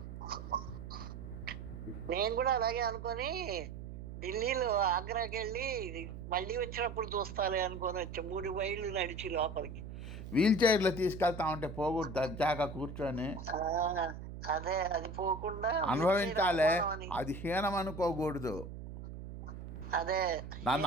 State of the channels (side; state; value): right; noise; hum, 10 dB below the sound